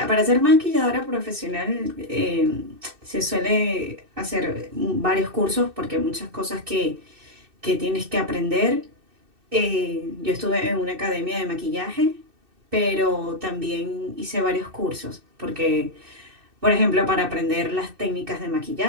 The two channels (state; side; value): late; left; 2.6 ms